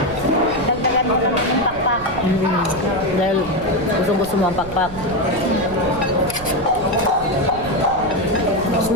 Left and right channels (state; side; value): noise; right; rumble, 15 dB below the sound